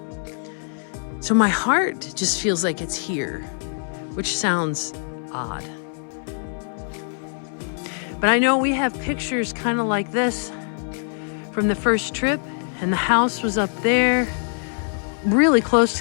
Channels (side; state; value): right; silent; 63 dB below the other